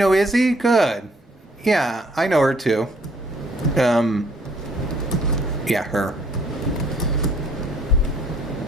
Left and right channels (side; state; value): both; normal; correlation 0.62